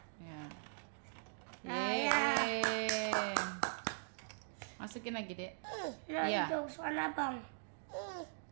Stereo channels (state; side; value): silent; left; digital silence